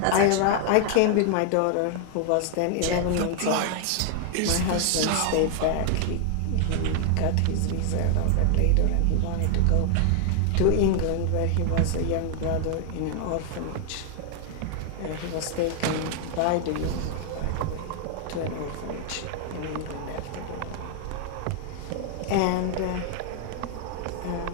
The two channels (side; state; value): both; different; correlation 0.00